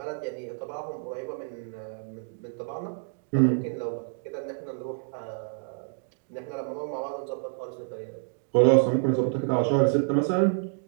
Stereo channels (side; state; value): left; silent; digital silence